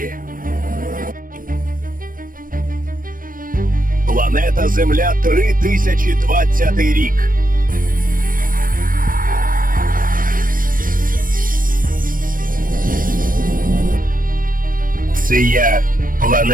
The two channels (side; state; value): left; late; 0.40 ms